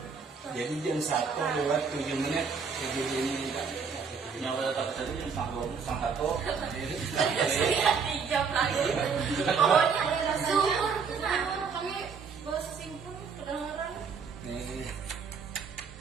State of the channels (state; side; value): quieter; left; 5.7 dB